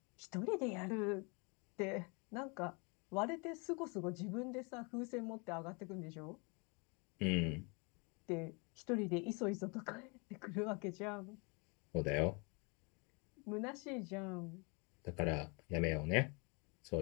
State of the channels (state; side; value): quieter; right; 31.8 dB